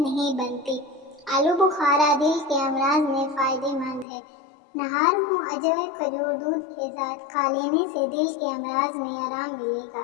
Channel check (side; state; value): right; drops out; at 4.0 s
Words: بنتی۔ آلو بخارا دل کے امراض میں فائدہ مند ہے۔ نہار منہ اجوے کھجور دودھ کے ساتھ کھا لینے سے دل کے امراض میں آرام ملے گا۔